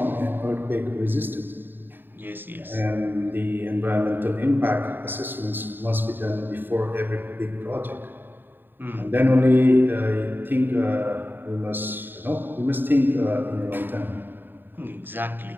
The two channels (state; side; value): late; left; 0.094 ms